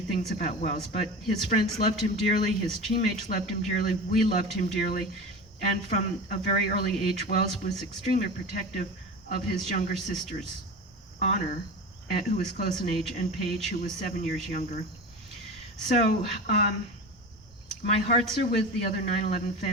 about Welles, but his friends loved him dearly, his teammates loved him dearly, we loved him dearly, and from a very early age, Welles was extremely protective of his younger sisters, Honor, who was close in age, and Paige, who was 7 years younger. So my hearts are with the other 9/11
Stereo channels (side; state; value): right; noise; rumble, 26 dB below the sound